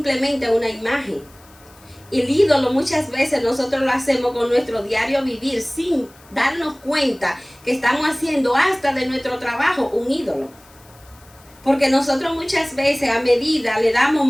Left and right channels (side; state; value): left; noise; hiss, 27 dB below the sound